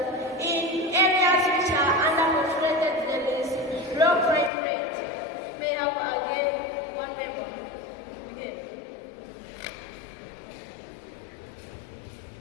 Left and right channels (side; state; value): right; drops out; at 4.5 s